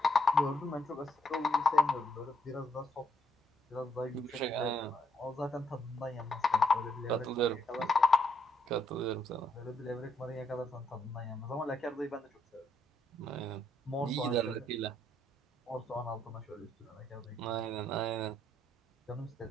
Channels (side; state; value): both; normal; correlation 0.74